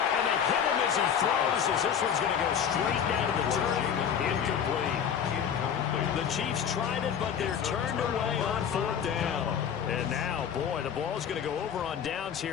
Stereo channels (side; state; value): right; quieter; 8.1 dB